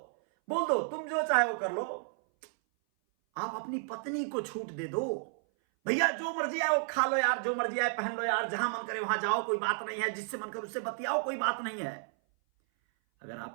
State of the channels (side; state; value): left; silent; 56 dB below the other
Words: बोल दो, तुम जो चाहे वो कर लो। आप अपनी पत्नी को छूट दे दो, भैया जो मर्जी आए वो खा लो यार, जो मर्जी आए पहन लो यार, जहां मन करे वहां जाओ, कोई बात नहीं है, जिससे मन करे उससे बतियाओ, कोई बात नहीं है। अगर